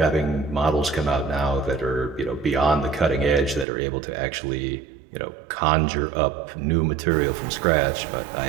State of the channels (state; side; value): drops out; left; at 3.7 s